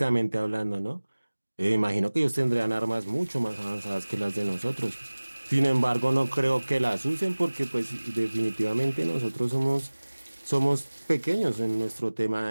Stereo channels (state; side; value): inverted; both; correlation -1.00